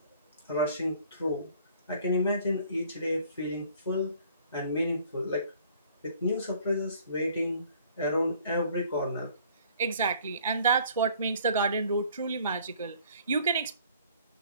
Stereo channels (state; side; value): inverted; both; correlation -0.56